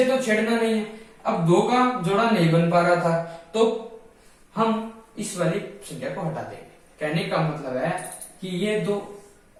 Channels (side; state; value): both; identical; correlation 1.00